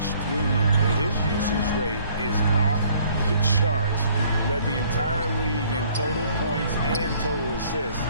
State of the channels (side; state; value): both; inverted; correlation -0.60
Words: through him. His usage rate is off the charts. Led the entire league in total points and total assists